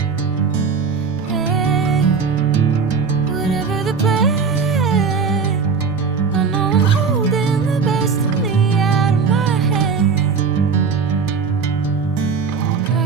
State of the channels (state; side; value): quieter; left; 5.4 dB